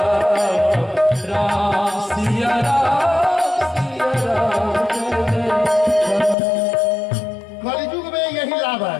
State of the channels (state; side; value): drops out; right; at 6.4 s